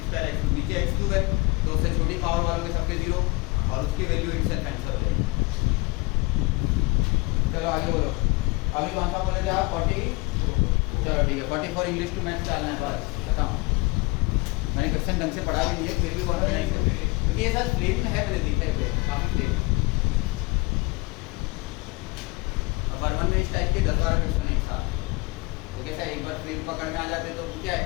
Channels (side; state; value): right; quieter; 25.1 dB